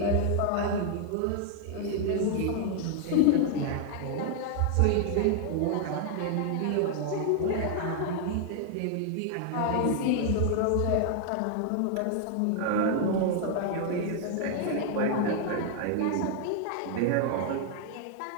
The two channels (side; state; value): both; different; correlation 0.00